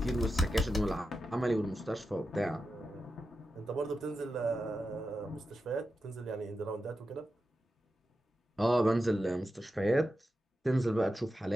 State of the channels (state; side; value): normal; both; correlation 0.90